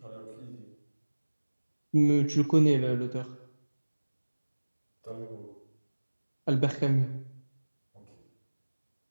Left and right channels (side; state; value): both; inverted; correlation -1.00